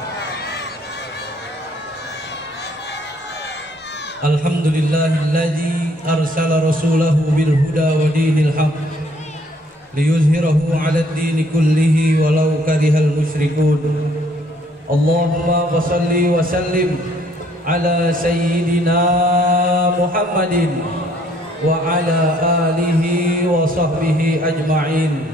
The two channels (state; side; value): normal; both; correlation 0.63